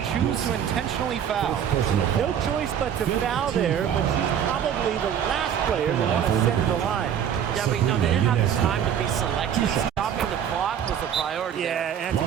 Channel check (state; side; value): quieter; left; 8.9 dB